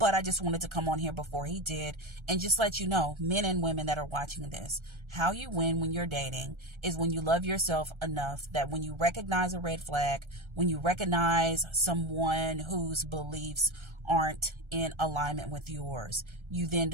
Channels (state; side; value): late; left; 1.3 ms